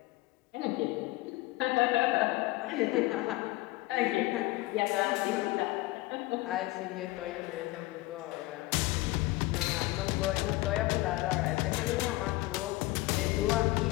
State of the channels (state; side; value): quieter; right; 19.9 dB